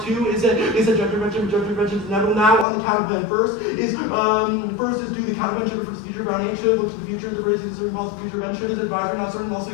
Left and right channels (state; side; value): drops out; right; at 2.7 s